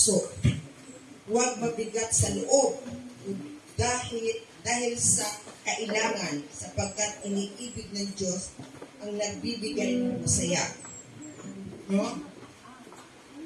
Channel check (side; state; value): both; identical; correlation 1.00